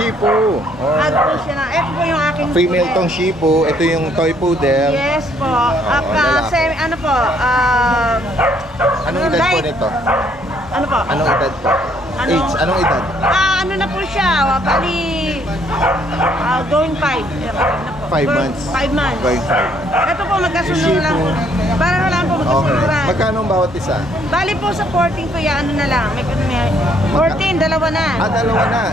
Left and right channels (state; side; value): normal; both; correlation 0.66